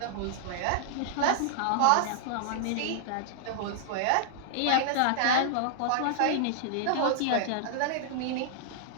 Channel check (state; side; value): different; both; correlation -0.01